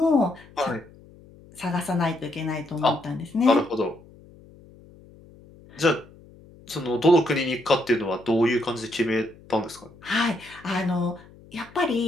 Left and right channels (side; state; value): left; noise; hum, 23 dB below the sound